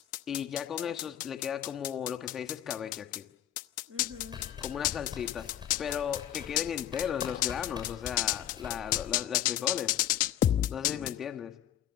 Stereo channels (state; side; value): quieter; right; 11.4 dB